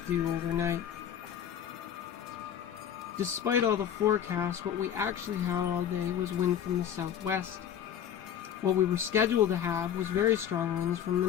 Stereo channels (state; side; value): quieter; right; 9.4 dB